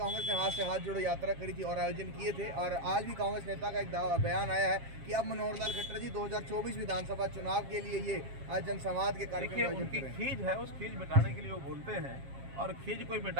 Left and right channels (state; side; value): late; left; 7.4 ms